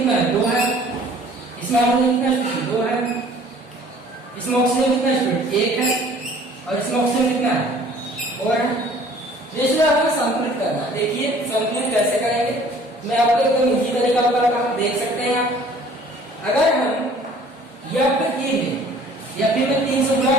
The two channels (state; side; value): normal; both; correlation 0.52